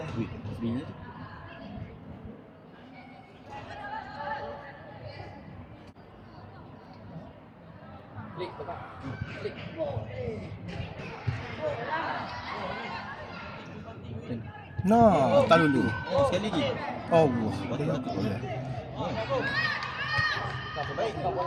Wih, bini tu. Klik Bapak. Klik. Nah, tak dulu. Sekali lagi. Allah. Batal. Boleh.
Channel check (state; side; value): identical; both; correlation 1.00